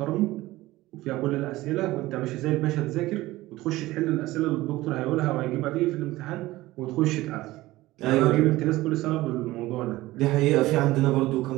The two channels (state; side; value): quieter; left; 17.9 dB